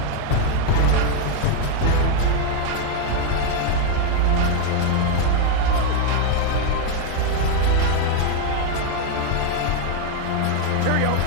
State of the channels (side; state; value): both; different; correlation 0.01